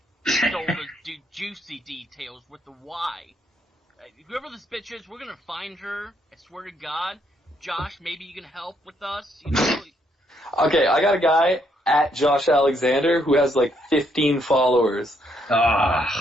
stole the Juicy Details with the Y. Whoever this bitch is, we're gonna find her, I swear to God. Josh, maybe you can help with us, you know? Okay, I got a guy at Josh Alexander who has like 15 followers.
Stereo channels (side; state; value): both; normal; correlation 0.73